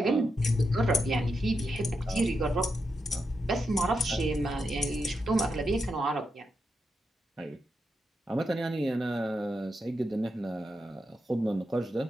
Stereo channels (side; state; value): both; normal; correlation 0.84